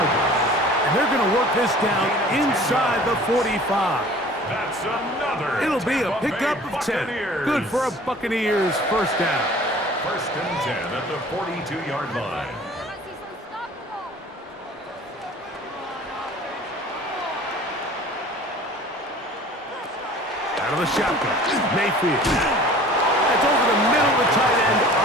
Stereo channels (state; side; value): normal; both; correlation 0.46